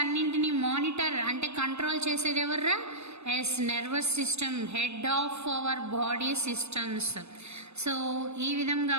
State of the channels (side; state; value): left; late; 0.80 ms